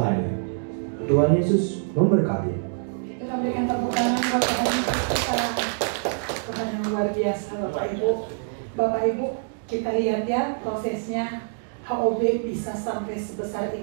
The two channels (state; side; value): silent; left; digital silence